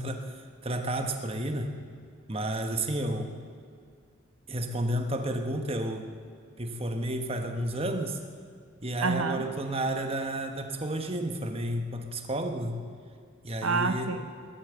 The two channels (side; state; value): both; normal; correlation 0.45